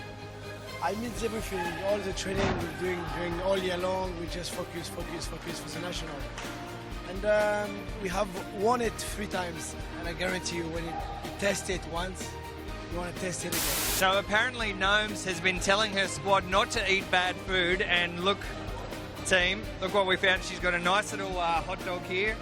It means everything. All the training we're doing during all year long, we just focus for the national. And we have won it 3 times, and I guarantee you when you test it once, you want to test it again. So apparently Gnomes has been telling her squad not to eat bad food, and look, team, look what we found. She's got a nice little hot dog here.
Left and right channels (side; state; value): both; identical; correlation 1.00